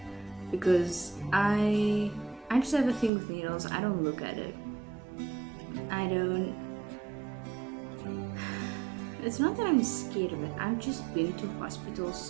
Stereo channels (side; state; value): left; drops out; at 3.1 s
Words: because I just have a thing with needles. I don't look at it. It's not that I'm scared of it. I've just been to hospital